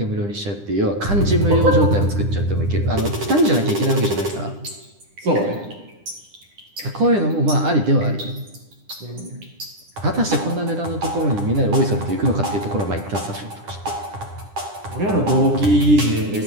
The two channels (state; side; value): late; left; 10 ms